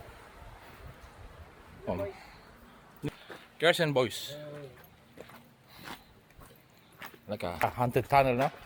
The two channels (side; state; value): both; identical; correlation 1.00